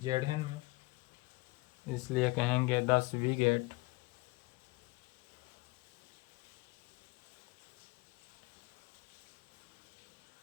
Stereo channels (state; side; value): quieter; right; 24.2 dB